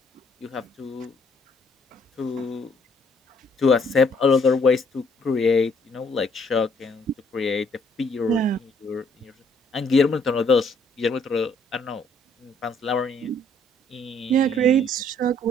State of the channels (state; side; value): normal; both; correlation 0.65